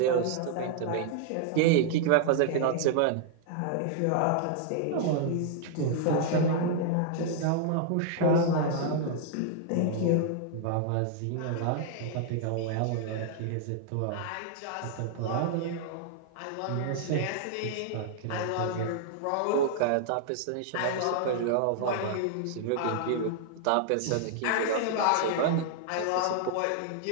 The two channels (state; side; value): different; both; correlation -0.01